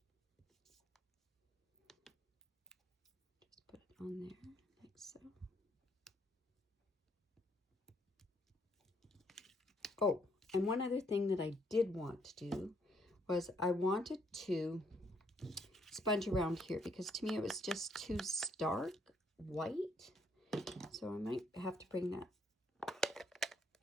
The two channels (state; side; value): normal; both; correlation 0.70